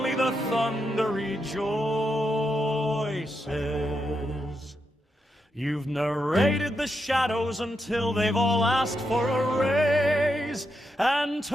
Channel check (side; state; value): both; normal; correlation 0.84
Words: the thunder rejoices. You've narrated the shadows until they've all asked for a raise, and